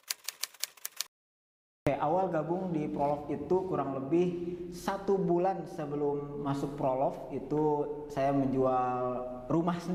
Oke, awal gabung di Prolog itu kurang lebih 1 bulan sebelum masuk Prolog itu saya menjual rumah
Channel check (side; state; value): both; identical; correlation 1.00